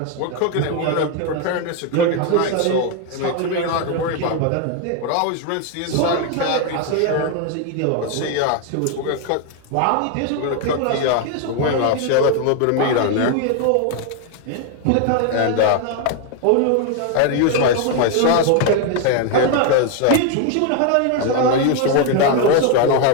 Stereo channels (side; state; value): both; different; correlation 0.01